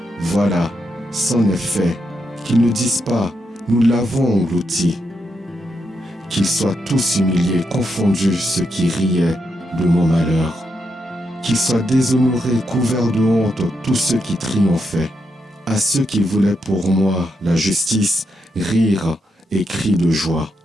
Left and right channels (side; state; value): both; normal; correlation 0.82